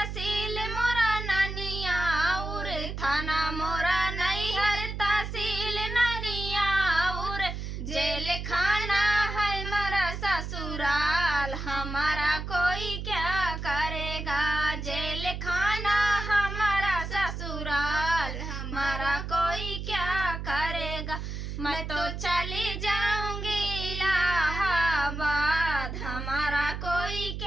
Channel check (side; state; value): right; noise; hum, 6 dB below the sound